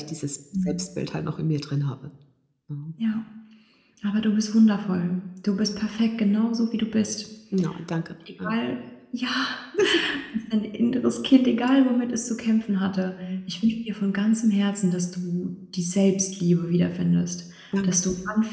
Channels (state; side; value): identical; both; correlation 1.00